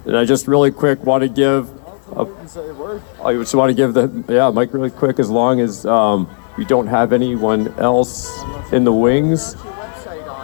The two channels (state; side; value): silent; right; digital silence